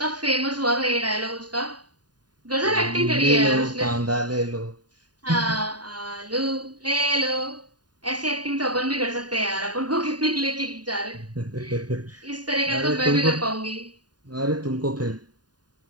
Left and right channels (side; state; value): left; late; 0.70 ms